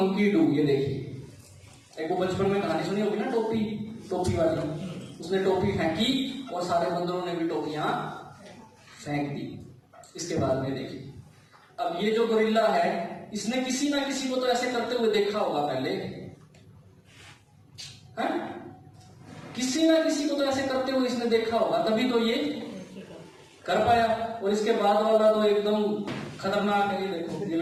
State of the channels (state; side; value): identical; both; correlation 1.00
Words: do. ये देखिए, एक वो बचपन में कहानी सुनी होगी ना, टोपी वाली। उसने टोपी फेंकी और सारे बंदरों ने भी टोपियां फेंक दी। इसके बाद में देखिए, अब ये जो गोरिल्ला है, इसने किसी ना किसी को तो ऐसे करते हुए देखा होगा पहले, है? किसी ना किसी को तो ऐसे करते हुए इसने देखा होगा, तभी तो ये कर पाया। और इसके बाद वाला तो एकदम खतरनाक है। ये देखो, ये